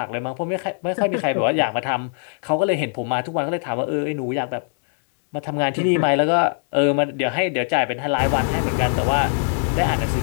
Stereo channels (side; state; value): right; silent; digital silence